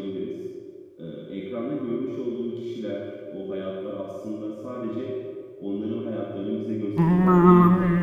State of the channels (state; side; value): identical; both; correlation 1.00